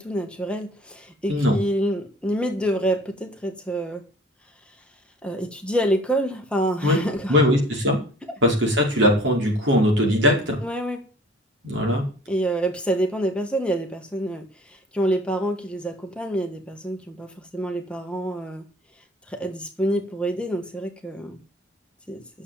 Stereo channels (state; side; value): normal; both; correlation 0.50